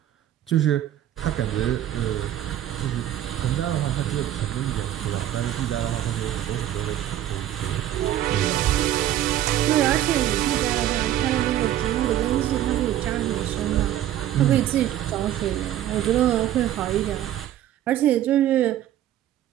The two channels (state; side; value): quieter; left; 12.3 dB